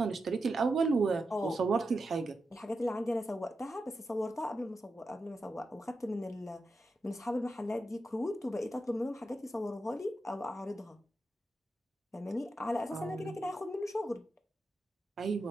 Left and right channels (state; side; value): normal; both; correlation 0.88